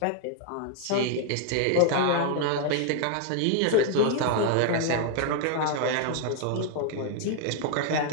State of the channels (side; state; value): both; different; correlation 0.00